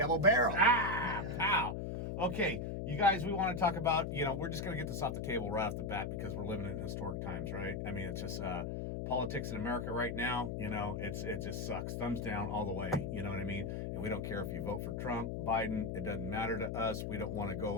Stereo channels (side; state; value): left; noise; hum, 3 dB below the sound